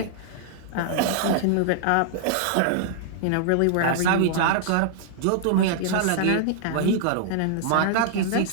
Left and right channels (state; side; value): different; both; correlation -0.01